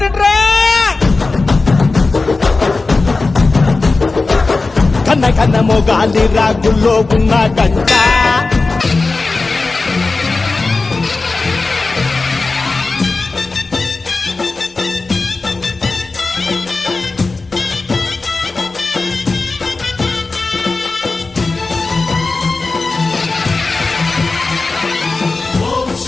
కన్న కన్న మొగాలి రాగుల్లో ఉన్న గంట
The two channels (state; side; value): quieter; right; 3.7 dB